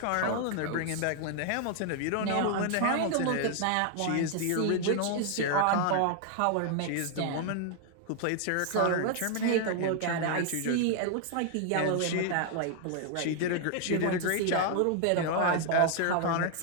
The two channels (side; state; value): both; different; correlation 0.00